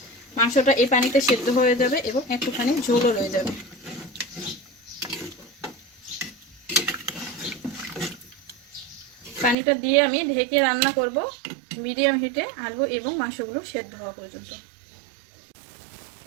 মাংসটা এই পানিতে সেদ্ধ হয়ে যাবে এবং একটুখানি ঝোলও রয়ে যাবে। পানিটা দিয়ে আমি ঢেকে রান্না করব মিডিয়াম হিটে, আলু এবং মাংসগুলো সেদ্ধ হওয়া পর্যন্ত।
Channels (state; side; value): drops out; left; at 9.6 s